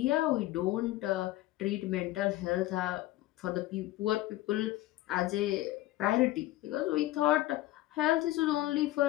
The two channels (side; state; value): right; quieter; 16.2 dB